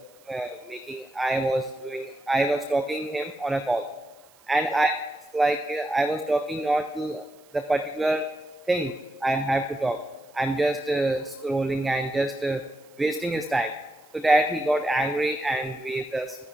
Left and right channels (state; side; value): noise; right; hiss, 29 dB below the sound